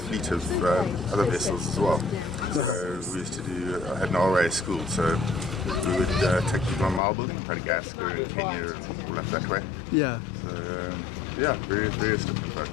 of other vessels as well. So we used to I had an RA school, so we would take people on Marlborough, Madagascar and Kenya and all up that way. Yeah. So various different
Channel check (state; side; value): drops out; right; at 7.0 s